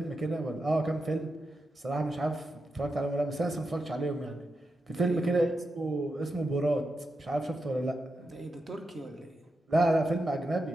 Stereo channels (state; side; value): normal; both; correlation 0.87